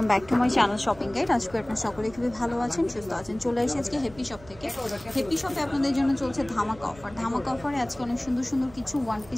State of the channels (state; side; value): noise; right; hum, 21 dB below the sound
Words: back to my channel shopping guide. আজকে আপনারা সকলে খুবই ভালো আছেন, সুস্থ আছেন। চলে এসেছি আজকে হ্যাপি শপ থেকে। হ্যাপি শপে আপনাদের জন্য চলছে ধামাকা অফার। ধামাকা অফারে আজকে অনেক সুন্দর সুন্দর কিছু ওয়ান